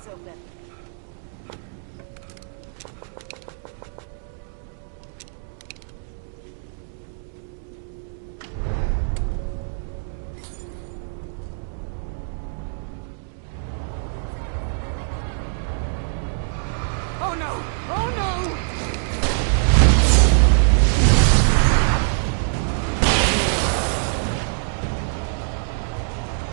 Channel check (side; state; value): left; silent; digital silence